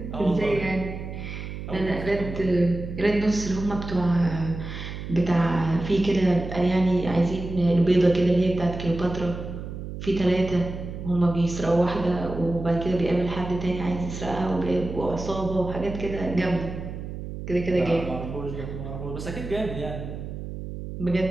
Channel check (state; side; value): noise; right; hum, 8 dB below the sound